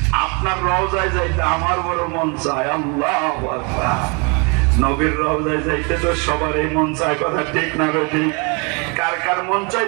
আপনার রওজায় যাইতে আমার বড় মন চায়। আল্লাহু আকবার। নবীর রওজায় যাইতে তো সবারই মন চায়। কথা ঠিক না ঠিক? কার কার মন চায়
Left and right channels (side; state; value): left; quieter; 32.8 dB